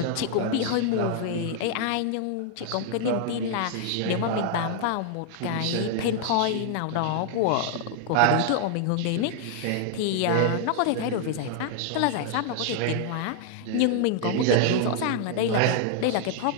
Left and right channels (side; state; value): both; different; correlation 0.00